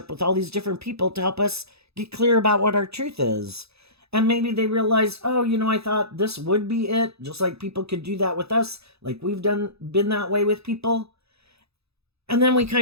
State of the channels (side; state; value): left; late; 0.79 ms